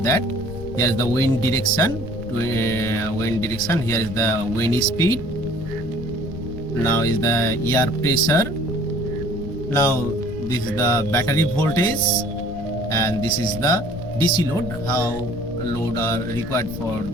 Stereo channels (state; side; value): noise; left; rumble, 11 dB below the sound